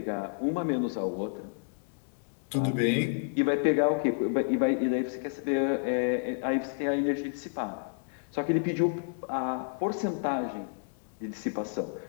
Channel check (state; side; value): silent; right; digital silence